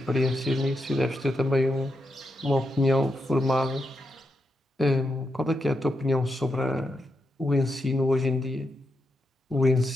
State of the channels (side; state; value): both; normal; correlation 0.85